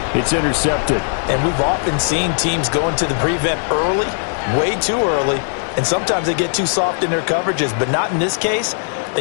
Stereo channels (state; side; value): silent; right; digital silence